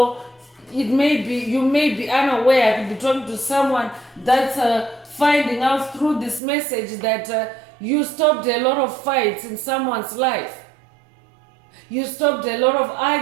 it may be, you may be unaware. I could be talking to someone that's finding out through this message that you stopped a lot of fights in someone's life. You stopped a lot of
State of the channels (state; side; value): drops out; left; at 6.4 s